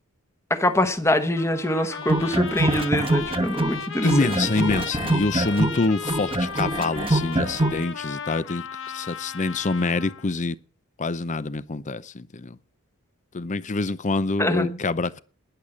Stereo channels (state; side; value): normal; both; correlation 0.60